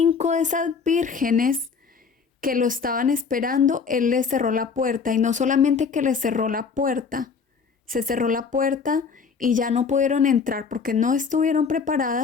de esas vírgenes que lo estaban esperando, él les cerró la puerta. Y no solamente que les cerró la puerta, se cerró la puerta y ya no pudieron entrar porque no estuvieron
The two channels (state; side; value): quieter; right; 5.6 dB